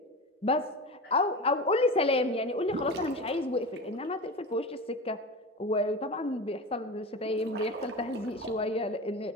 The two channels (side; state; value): both; normal; correlation 0.28